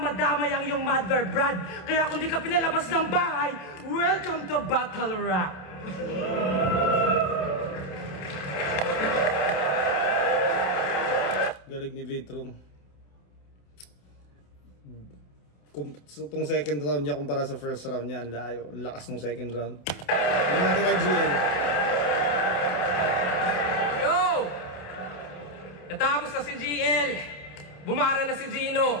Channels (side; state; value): right; late; 28 ms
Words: madamay ang iyong mother brad. Kaya kung di ka pinalabas ng bahay, welcome to Battle Rap. Galing ni Vitro. Itong second round niya kumpara sa first round niya, ang layo. Ang lakas ng second round. Ano natin kay GL? Yo! Natapos na si GL. Bumara na si Gino.